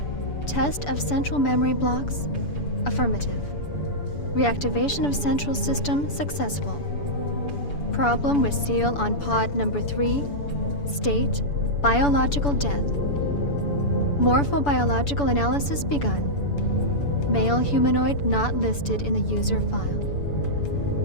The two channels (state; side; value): late; right; 6.9 ms